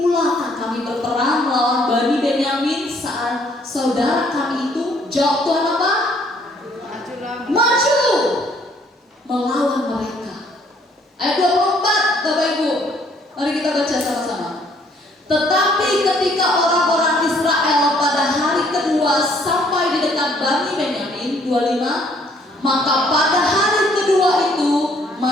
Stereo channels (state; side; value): normal; both; correlation 0.64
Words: kami berperang melawan Bani Benyamin saat saudara kami itu? Jawab Tuhan apa? Maju melawan mereka. Ayat 24, Bapak Ibu, mari kita baca sama-sama. Tetapi ketika orang-orang Israel pada hari kedua sampai di dekat Bani Benyamin, 25, maka pada hari kedua itu